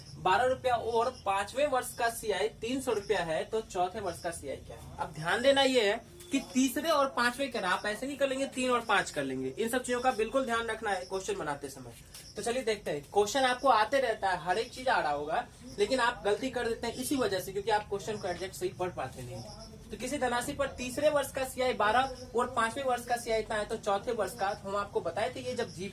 12 रुपया और 5वें वर्ष का सीआई 300 रुपया है, तो चौथे वर्ष का सीआई क्या है? अब ध्यान देना ये है कि तीसरे और 5वें करना, आप ऐसे नहीं कर लेंगे 3 और 5 कर लेंगे। इन सब चीजों का बिल्कुल ध्यान रखना है क्वेश्चन बनाते समय। तो चलिए देखते हैं, क्वेश्चन आपको आते रहता है, हर एक चीज आ रहा होगा, लेकिन आप गलती कर देते हैं इसी वजह से, क्योंकि आप क्वेश्चन को एग्जैक्ट सही पढ़ पाते नहीं। तो किसी धनराशि पर तीसरे वर्ष का सीआई 12 और 5वें वर्ष का सीआई इतना है, तो चौथे वर्ष का, हम आपको बताए थे ये जब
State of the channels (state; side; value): identical; both; correlation 1.00